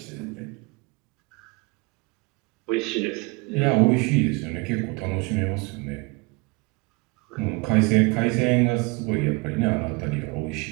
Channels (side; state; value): left; quieter; 27.1 dB